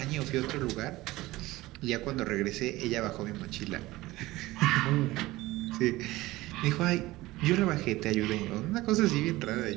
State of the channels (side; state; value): left; quieter; 18.6 dB